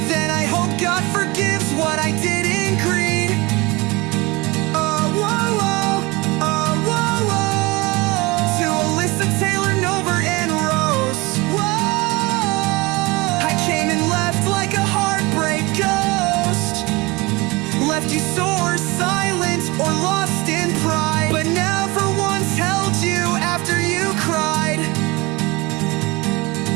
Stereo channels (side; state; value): left; quieter; 23.7 dB